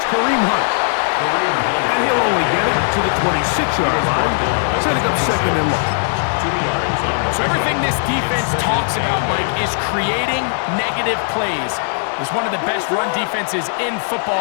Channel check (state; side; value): silent; right; digital silence